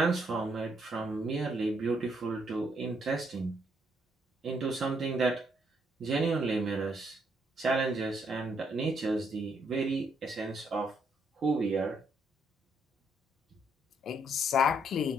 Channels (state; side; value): normal; both; correlation 0.72